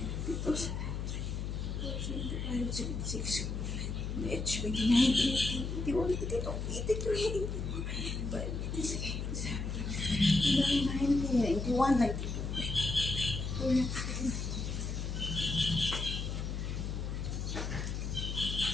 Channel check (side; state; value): left; noise; hum, 3 dB below the sound